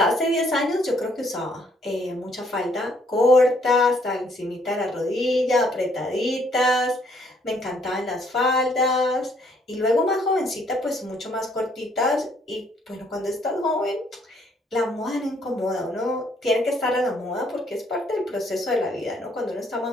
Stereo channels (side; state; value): both; normal; correlation 0.67